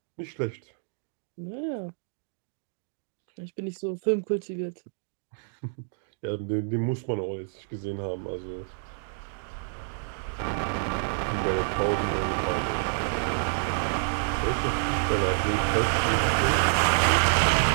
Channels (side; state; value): left; silent; digital silence